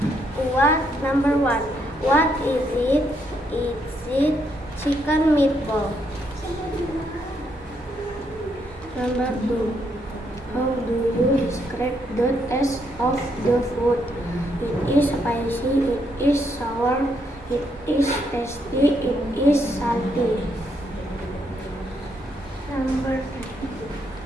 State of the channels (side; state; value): both; normal; correlation 0.75